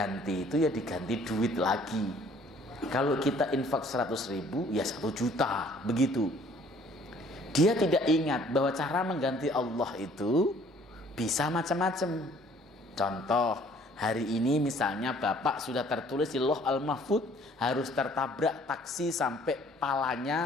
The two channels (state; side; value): normal; both; correlation 0.57